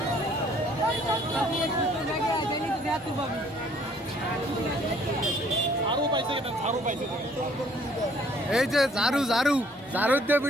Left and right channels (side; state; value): both; normal; correlation 0.60